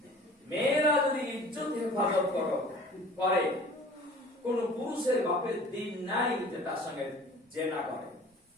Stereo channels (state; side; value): normal; both; correlation 0.46